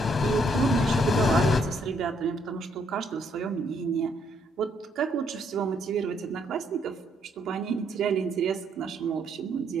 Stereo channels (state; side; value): normal; both; correlation 0.71